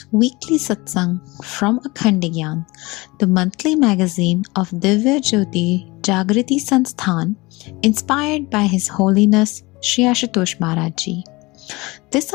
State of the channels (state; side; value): quieter; right; 23.0 dB